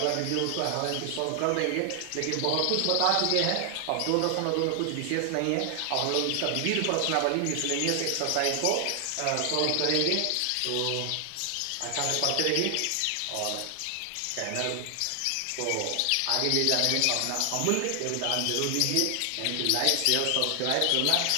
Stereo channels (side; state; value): both; different; correlation 0.00